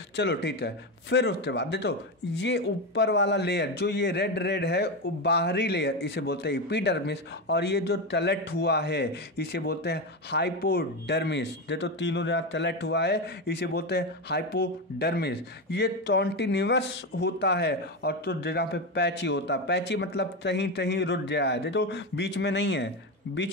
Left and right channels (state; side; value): normal; both; correlation 0.14